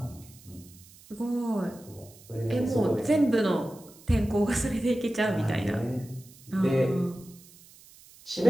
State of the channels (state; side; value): noise; right; hiss, 23 dB below the sound